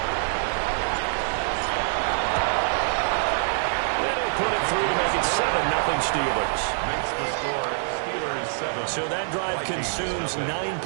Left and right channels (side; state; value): left; silent; 60 dB below the other